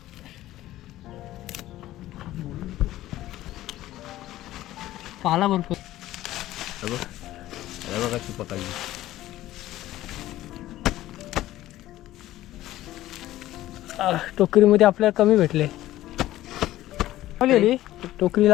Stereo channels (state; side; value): quieter; right; 15.0 dB